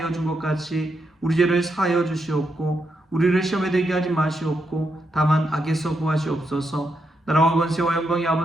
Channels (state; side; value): normal; both; correlation 0.82